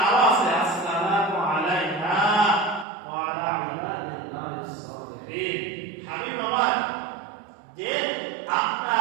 আরো আছে, আসসালামু আলাইনা ওয়া আলা ইবাদিল্লাহিস সালিহিন। হাবিব আমার যে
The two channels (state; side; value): drops out; left; at 2.9 s